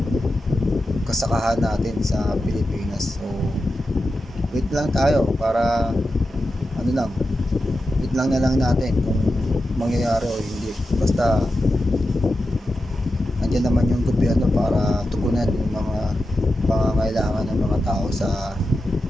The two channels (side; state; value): both; normal; correlation 0.90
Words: kasakahan natin sa Pilipinas. So wait lang tayo para wait lang na lang natin kung mangyayari o hindi. Basta andyan naman yung gobyerno para tugunan yung mga pangangailangan ng mga tao sa